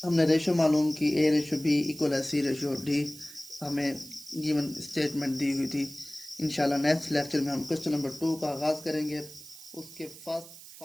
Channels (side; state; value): right; noise; hiss, 17 dB below the sound